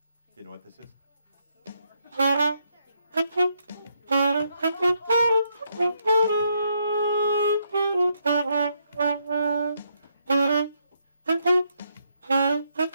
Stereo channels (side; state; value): both; inverted; correlation -0.77